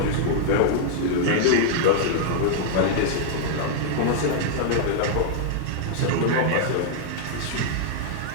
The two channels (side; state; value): both; different; correlation -0.01